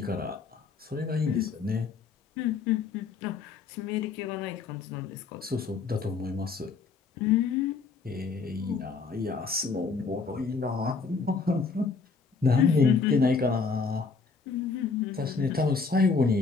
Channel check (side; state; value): right; quieter; 4.8 dB